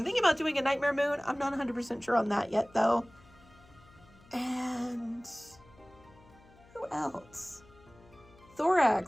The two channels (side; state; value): left; noise; hum, 26 dB below the sound